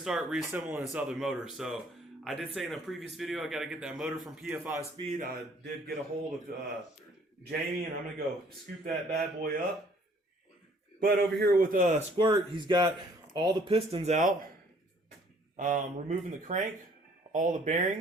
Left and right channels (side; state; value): both; normal; correlation 0.59